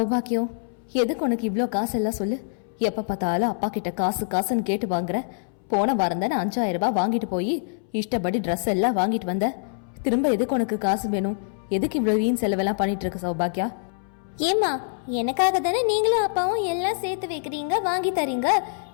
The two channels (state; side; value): silent; right; 62 dB below the other